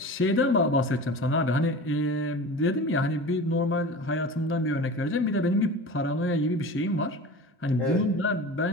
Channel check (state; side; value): normal; both; correlation 0.34